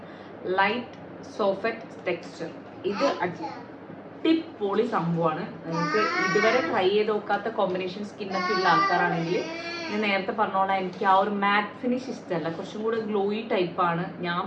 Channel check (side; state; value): both; identical; correlation 1.00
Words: light soft texture. ഇത് അടിപൊളി സംഭവമാണ്. നിങ്ങൾക്ക് ഇതുവരെ ട്രൈ ചെയ്ത് നോക്കാത്ത കോമ്പിനേഷൻ സ്കിന്നൊക്കെ ഉള്ള ആൾക്കാരാണെങ്കിൽ ഞാൻ നേരത്തെ പറഞ്ഞോളാം, എനിക്ക് ആ ഒരു മാറ്റ് ഫിനിഷ് ഇഷ്ടമല്ല, കുറച്ചും കൂടെ ഗ്ലോയി ടൈപ്പാണ് ഞാൻ